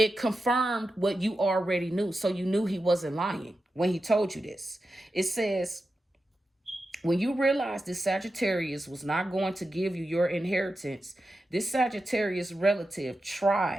confirmed what you already knew. So you knew he wasn't lying when he told you this. It says, when you realized this Sagittarius was not going to give you your inheritance, this Sagittarius relative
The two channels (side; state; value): both; normal; correlation 0.91